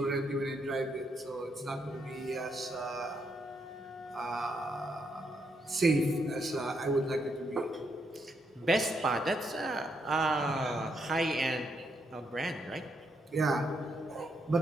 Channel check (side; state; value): both; normal; correlation 0.78